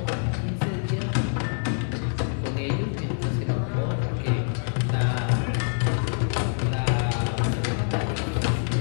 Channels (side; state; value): right; silent; 56 dB below the other